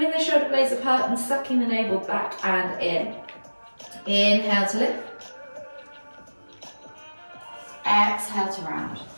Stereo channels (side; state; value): both; inverted; correlation -1.00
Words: the shoulder blades apart and sucking the navel back and in. Inhale to lift. Exhale to round.